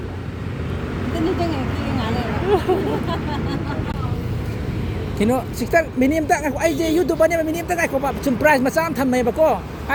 thì nó xịt tắc minim tắc ai gì YouTube này minim tắc ai có bạn chum price mà sao thầm mày bà cô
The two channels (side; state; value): both; identical; correlation 1.00